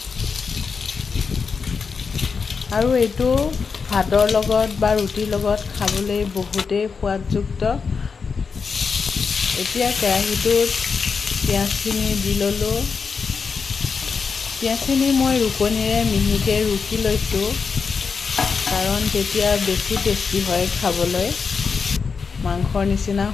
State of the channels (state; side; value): quieter; right; 5.4 dB